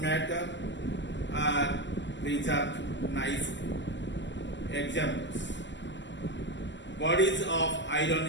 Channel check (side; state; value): right; late; 0.53 ms